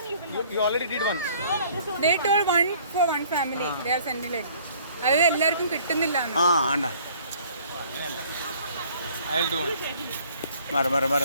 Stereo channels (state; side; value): inverted; both; correlation -0.56